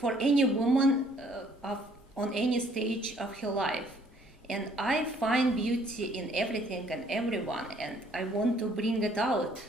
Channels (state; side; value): normal; both; correlation 0.62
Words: for any woman on any stage of her life. And I find beauty in everything and everyone, and I want to bring it out